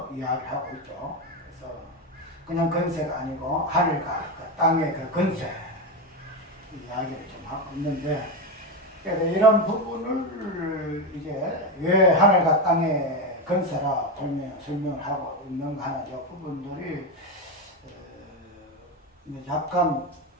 이야기하고 있죠. 그래서 그냥 건세가 아니고 하늘과 그 땅의 그 건세 이야기를 좀 하고 있는데, 그래서 이런 부분을 이제 왜 하늘과 땅의 건세라 설명을 하고 있는가 하는 이 부분들이 약간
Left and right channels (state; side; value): normal; both; correlation 0.13